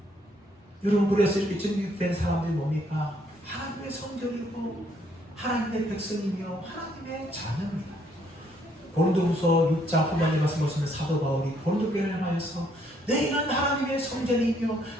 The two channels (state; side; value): normal; both; correlation 0.68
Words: 여러분, 그래서 이렇게 정결된 사람들이 뭡니까? 하나님의 성전이고 하나님의 백성이며 하나님의 자녀입니다. 고린도후서 6장 후반에 말씀 보시면 사도 바울이 고린도 교회를 향하여서 너희는 하나님의 성전이며